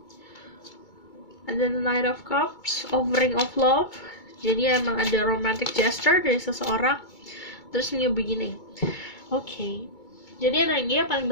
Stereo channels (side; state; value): right; late; 2.2 ms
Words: Ada the Knight of Cups, offering of love. Jadi emang ada romantic gesture dari seseorang. Terus new beginning. Oke. Jadi energi yang paling